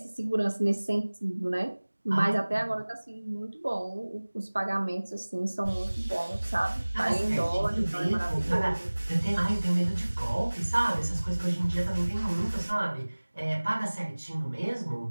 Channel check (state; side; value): inverted; both; correlation -1.00